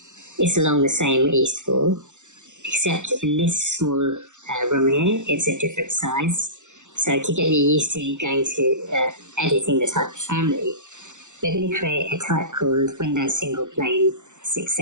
It's along the same east wall, except in this small room here, it's a different size. So to get you used to going to editing the type of family, we're going to create a type called Windows Single Plane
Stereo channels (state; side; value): late; left; 0.85 ms